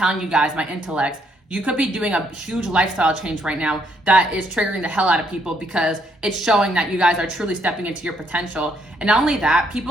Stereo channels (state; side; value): normal; both; correlation 0.71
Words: you guys, my intellects, you could be doing a huge lifestyle change right now that is triggering the hell out of people because it's showing that you guys are truly stepping into your potential. And not only that,